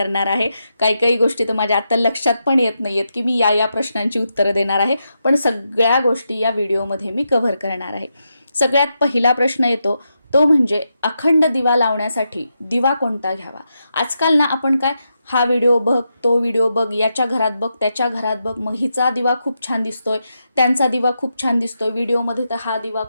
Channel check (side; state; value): both; inverted; correlation -0.85